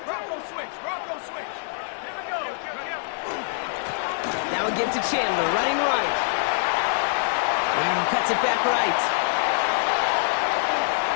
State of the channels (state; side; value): silent; right; 56 dB below the other